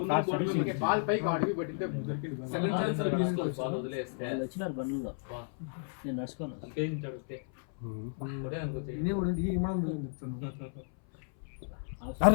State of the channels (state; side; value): silent; right; 56 dB below the other